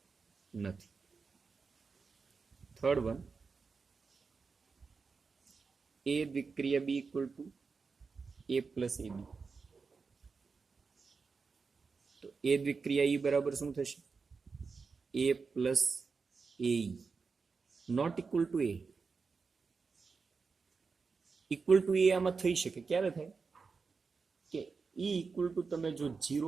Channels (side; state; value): left; quieter; 4.9 dB